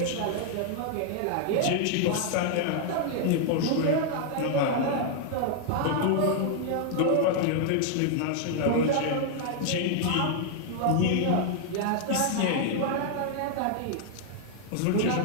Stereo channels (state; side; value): different; both; correlation 0.00